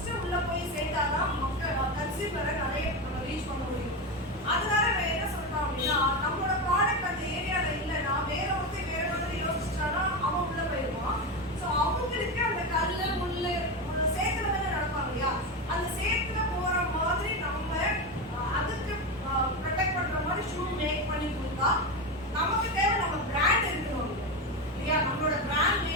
உள்ள போய் சேர்த்தாதான் மக்கள் கன்சியூமரை நிறைய ரீச் பண்ண முடியும். அதனால என்ன சொல்றோம் அப்படின்னா, நம்மளோட ப்ராடக்ட் அந்த ஏரியால இல்லைன்னா வேற ஒருத்தர் வேற மாதிரி யோசிச்சானா அவன் உள்ள போயிடுவான். ஸோ அவங்களுக்கு அந்த கல்லு முள்ளு சேத்துல தானே நடப்பாங்க இல்லையா, அந்த சேத்துல போற மாதிரி நம்ம அதுக்கு ப்ரொடெக்ட் பண்ற மாதிரி ஷூ மேக் பண்ணி கொடுத்தா நமக்கு தேவை நம்ம பிராண்ட் இருக்கணும் இல்லையா, நம்மளோட பிராண்ட்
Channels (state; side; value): normal; both; correlation 0.16